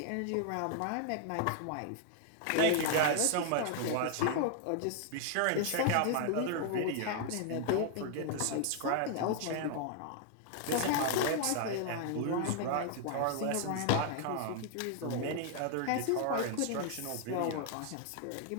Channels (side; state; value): both; different; correlation 0.00